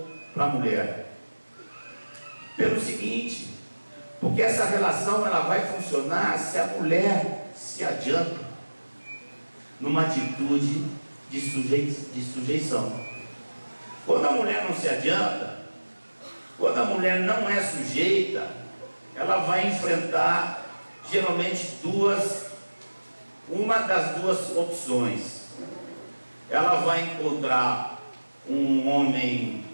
para a mulher? Pelo seguinte: porque essa relação ela vai funcionar se a mulher se adianta numa atitude de sujeição. Quando a mulher não se adianta, quando a mulher não é sujeita, ela vai enfrentar geralmente uma das duas opções. Ela vai encontrar um homem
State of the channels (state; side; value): inverted; both; correlation -1.00